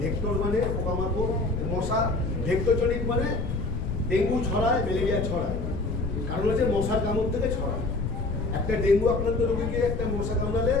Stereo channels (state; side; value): noise; left; rumble, 3 dB below the sound